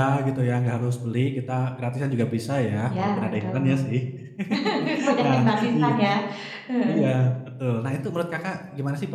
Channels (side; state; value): both; identical; correlation 1.00